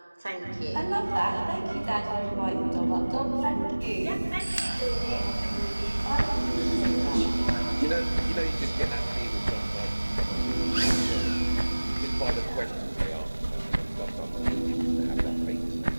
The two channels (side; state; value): both; inverted; correlation -1.00